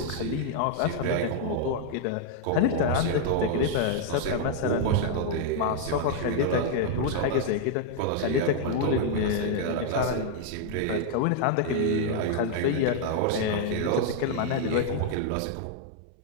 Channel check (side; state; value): both; different; correlation 0.00